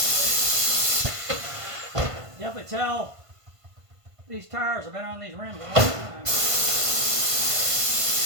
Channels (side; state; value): left; late; 1.5 ms